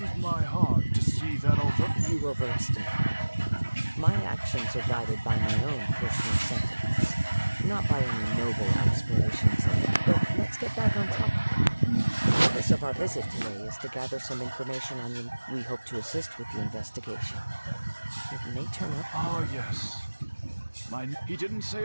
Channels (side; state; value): both; inverted; correlation -1.00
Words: my heart to see that although... You overestimate me. My actions are guided by my own personal sentiments, not by any noble aspirations of it. But let's get back on topic. The purpose of our visit today is to gather some information on you. We hope to assist with the investigation. It may turn up... Ah, yes. He didn't say